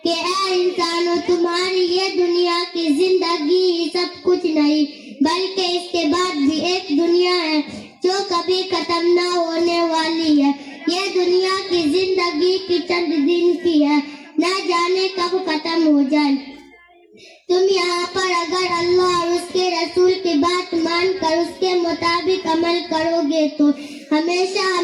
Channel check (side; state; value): both; identical; correlation 1.00